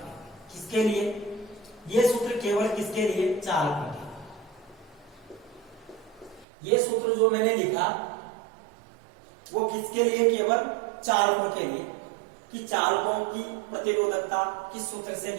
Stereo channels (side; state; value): left; drops out; at 6.5 s